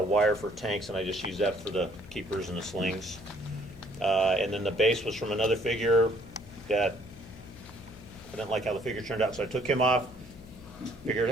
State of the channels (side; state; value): left; noise; hum, 18 dB below the sound